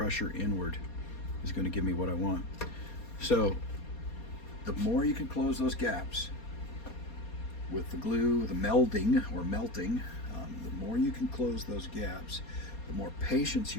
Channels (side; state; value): right; late; 4.2 ms